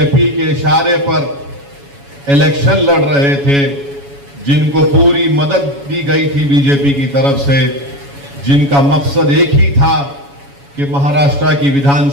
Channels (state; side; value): late; left; 7.1 ms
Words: के इशारे पर इलेक्शन लड़ रहे थे, जिनको पूरी मदद दी गई थी बीजेपी की तरफ से, जिनका मकसद एक ही था कि महाराष्ट्र की